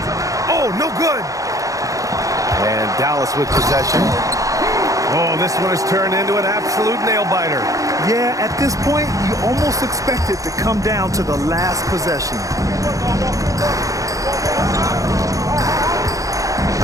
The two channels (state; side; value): late; left; 0.16 ms